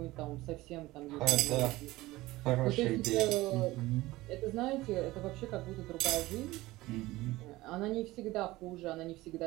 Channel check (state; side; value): quieter; left; 18.6 dB